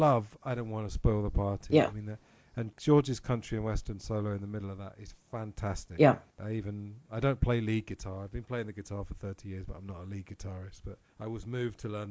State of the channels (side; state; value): both; identical; correlation 1.00